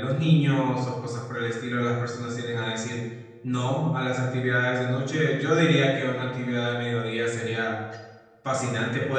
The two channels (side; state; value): both; identical; correlation 1.00